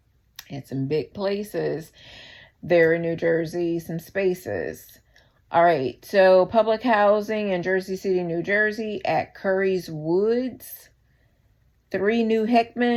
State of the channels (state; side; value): identical; both; correlation 1.00